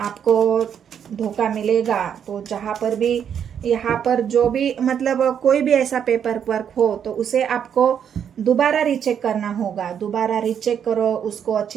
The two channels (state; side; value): quieter; left; 8.4 dB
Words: धोखा मिलेगा। तो जहाँ पर भी यहाँ पर जो भी मतलब कोई भी ऐसा पेपर वर्क हो तो उसे आपको दोबारा रीचेक करना होगा। दोबारा रीचेक करो, उसको